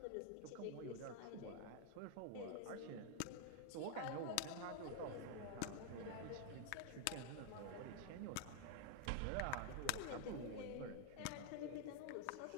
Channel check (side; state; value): both; different; correlation 0.00